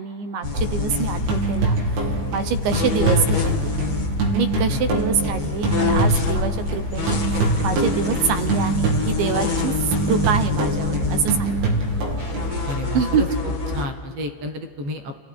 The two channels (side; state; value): left; late; 15 ms